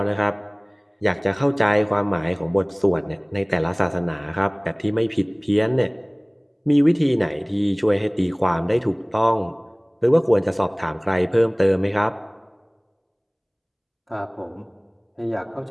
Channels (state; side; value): identical; both; correlation 1.00